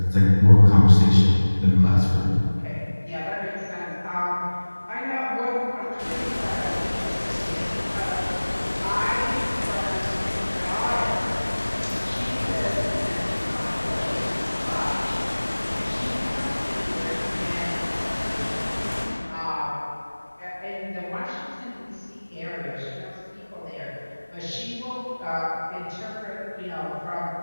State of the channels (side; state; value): both; inverted; correlation -1.00